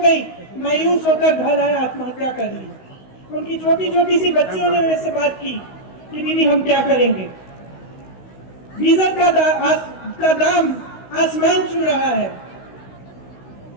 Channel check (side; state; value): right; late; 16 ms